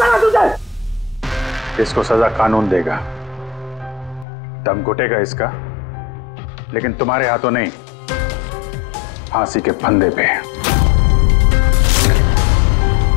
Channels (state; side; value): drops out; right; at 4.2 s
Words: ना तुझे। इसको सजा कानून देगा, दम घुटेगा इसका, लेकिन तुम्हारे हाथों नहीं, फांसी के फंदे पे।